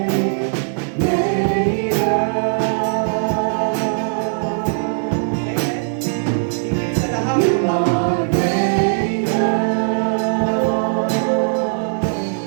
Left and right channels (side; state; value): left; silent; digital silence